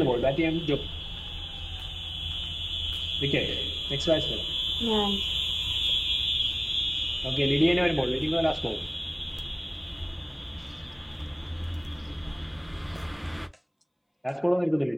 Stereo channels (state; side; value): identical; both; correlation 1.00